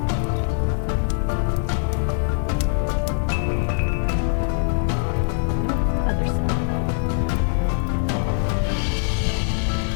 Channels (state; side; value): silent; right; 64 dB below the other